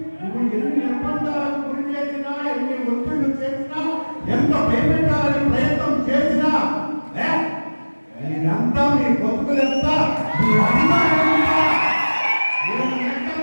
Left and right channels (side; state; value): both; inverted; correlation -1.00